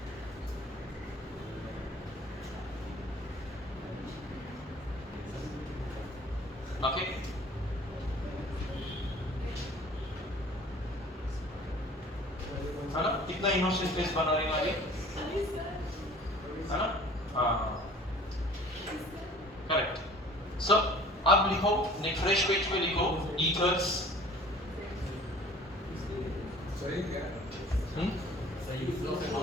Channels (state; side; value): normal; both; correlation 0.48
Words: Okay. है ना? कितना इनोसेंट फेस बना रही हमारी, है ना? हाँ, करेक्ट. सो अब लिखो, फ्रेश पेज पे लिखो ethers. सही क्या? सही